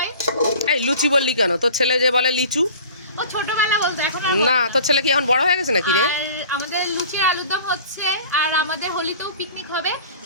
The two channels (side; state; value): both; inverted; correlation -0.43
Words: এই লুচি বললি কেন? তোর ছেলে যে বলে লিচু। ও ছোটবেলা বলতো, এখন না, তোর ছেলে কি এখন বড় হয়ে গেছে নাকি রে? আর আমাদের লুচি আর আলুর দম হচ্ছে, আর আমাদের হোলিতেও পিকনিক হবে।